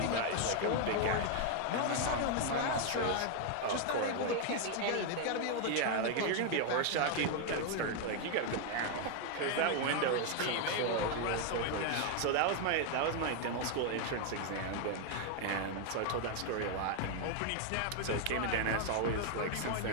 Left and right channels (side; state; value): both; different; correlation 0.00